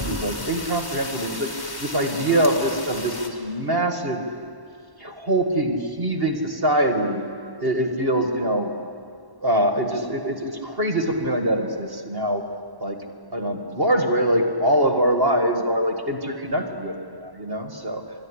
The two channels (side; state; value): left; late; 1.1 ms